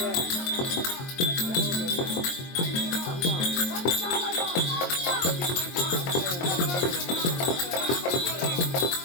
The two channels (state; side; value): late; right; 22 ms